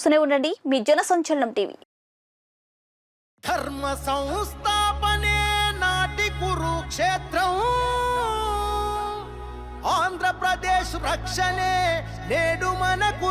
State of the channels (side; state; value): both; identical; correlation 1.00